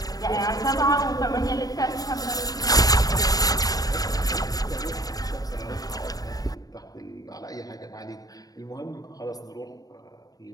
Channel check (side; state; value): right; late; 0.18 ms